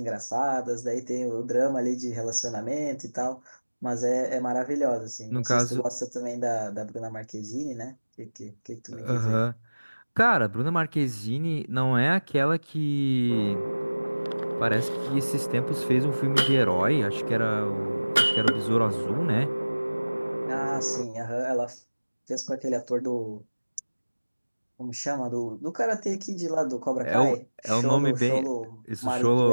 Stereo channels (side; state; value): both; inverted; correlation -1.00